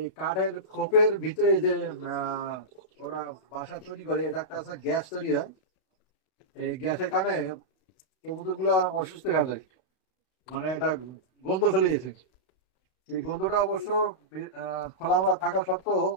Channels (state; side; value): late; right; 32 ms